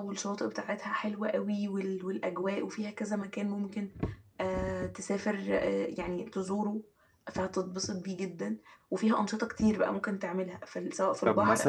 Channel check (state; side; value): identical; both; correlation 1.00